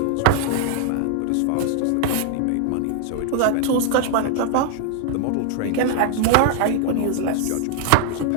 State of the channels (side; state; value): both; different; correlation 0.00